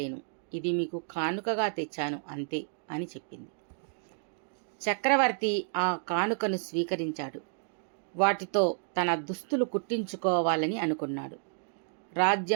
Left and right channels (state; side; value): silent; left; 57 dB below the other